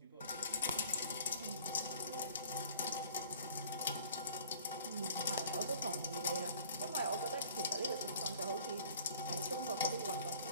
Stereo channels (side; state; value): both; inverted; correlation -0.51